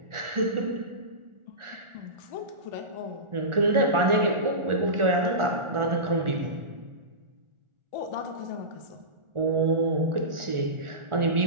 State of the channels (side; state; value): left; late; 1.4 ms